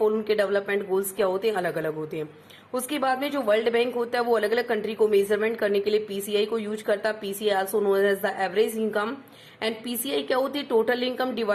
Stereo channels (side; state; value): both; identical; correlation 1.00